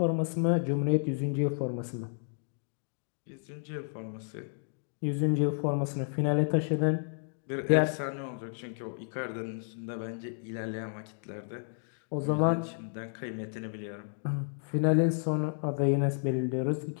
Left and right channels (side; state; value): right; silent; digital silence